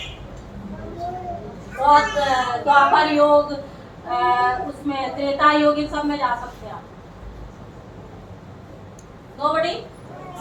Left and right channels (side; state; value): both; identical; correlation 1.00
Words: बहुत द्वापर योग, उसमें त्रेता योग, इन सब में जा सकते हैं आप। नोबडी?